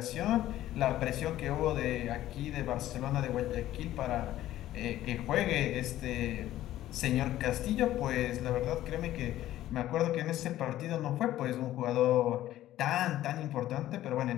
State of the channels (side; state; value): right; quieter; 13.9 dB